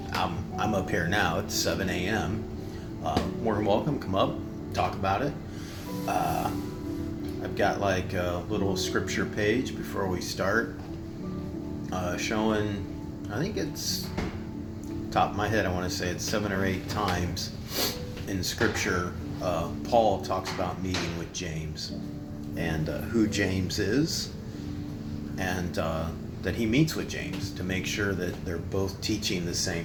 I'm up here now. It's 7 a.m. More than welcome. Come up, talk about it. I've got like a little scripture page before we start, showing, I think it's, top of my head, I want to say it's 7 or 8 times in scripture, Paul talks about meeting with James and who James is, and that he meets with James to make sure that they're both teaching the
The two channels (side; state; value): both; identical; correlation 1.00